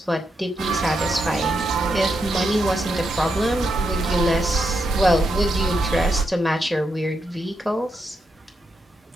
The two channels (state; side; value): normal; both; correlation 0.83